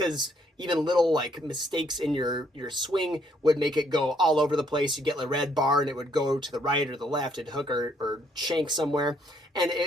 even little mistakes in your swing would make it go all over the place. You get the red bar and it would go to the right or the left, it'd hook or shank somewhere. And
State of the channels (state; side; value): normal; both; correlation 0.69